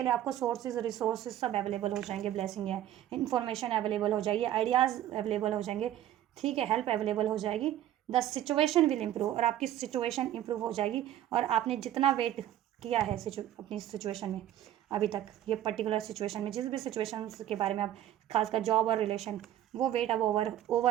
लिए आपको सोर्सेज रिसोर्सेज सब अवेलेबल हो जाएंगे, ब्लेसिंग है, इन्फॉर्मेशन अवेलेबल हो जाएगी, आइडियाज़ अवेलेबल हो जाएंगे, ठीक है, हेल्प अवेलेबल हो जाएगी, द सिचुएशन विल इम्प्रूव, और आपकी सिचुएशन इम्प्रूव हो जाएगी, और आपने जितना वेट किया है अपनी सिचुएशन में अभी तक, ये पर्टिकुलर सिचुएशन में जिस भी सिचुएशन के बारे में आप, खासकर जॉब और रिलेशन, वो वेट अब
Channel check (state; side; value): quieter; left; 12.3 dB